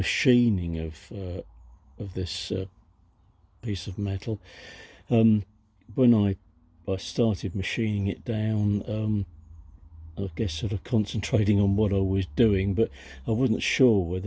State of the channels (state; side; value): identical; both; correlation 1.00